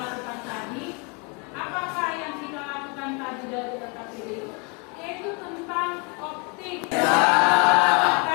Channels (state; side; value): quieter; right; 32.8 dB